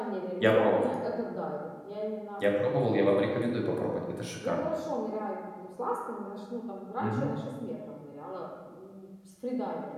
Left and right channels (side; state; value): both; identical; correlation 1.00